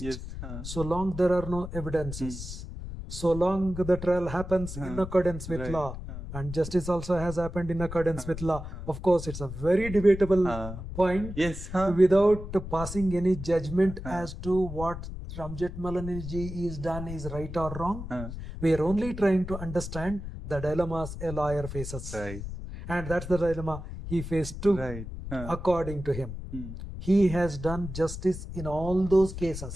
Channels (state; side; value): noise; left; rumble, 9 dB below the sound